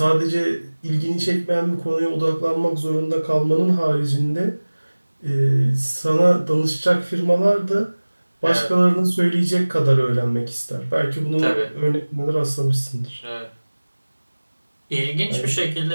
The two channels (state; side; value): inverted; both; correlation -1.00